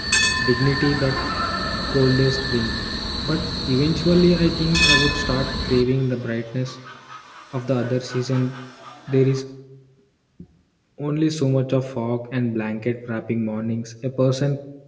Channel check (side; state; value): both; identical; correlation 1.00